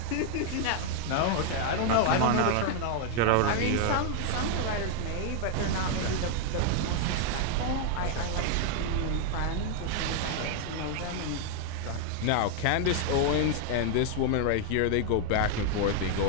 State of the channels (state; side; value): different; both; correlation 0.00